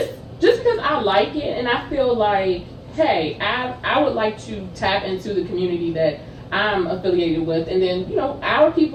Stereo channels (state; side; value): identical; both; correlation 1.00